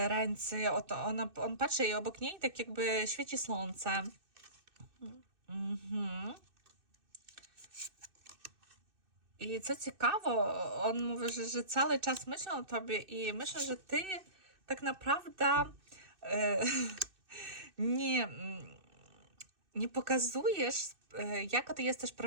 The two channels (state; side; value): late; left; 2.6 ms